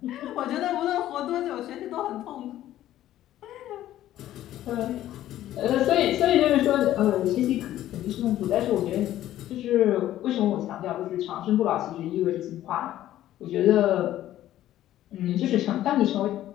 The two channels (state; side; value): quieter; right; 13.3 dB